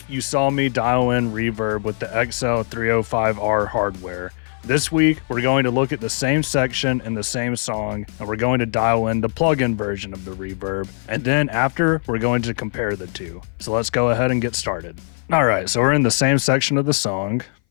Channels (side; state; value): right; silent; 60 dB below the other